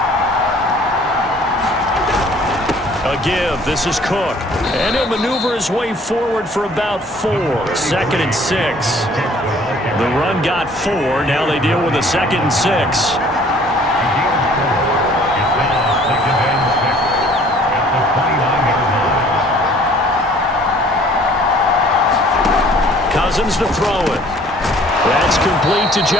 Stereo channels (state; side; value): normal; both; correlation 0.55